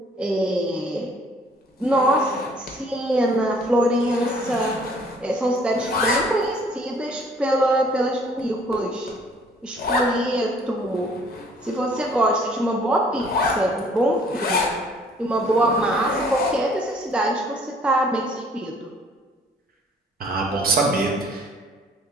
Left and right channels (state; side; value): normal; both; correlation 0.58